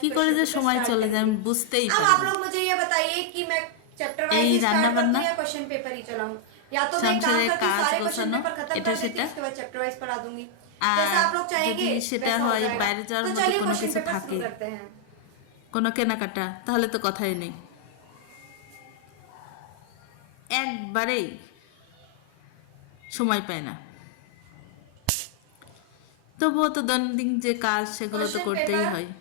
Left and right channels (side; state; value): both; different; correlation 0.00